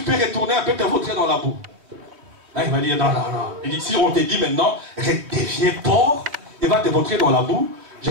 peux retourner un peu te vautrer dans la boue. Là, il va dire, non, non, non. Il dit, si on te dit maintenant, redeviens porc et va te vautrer dans la boue, je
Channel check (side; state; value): left; late; 3.2 ms